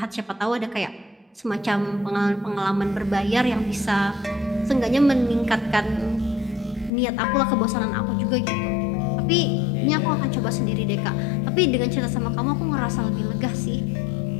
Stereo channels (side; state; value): right; drops out; at 6.9 s